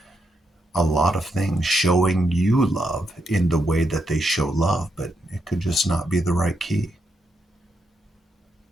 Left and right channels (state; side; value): normal; both; correlation 0.81